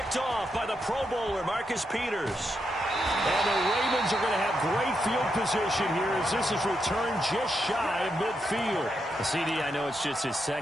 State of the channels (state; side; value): normal; both; correlation 0.83